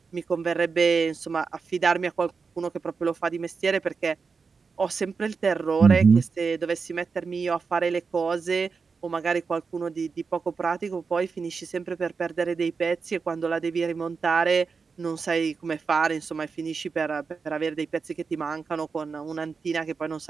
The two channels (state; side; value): quieter; left; 5.1 dB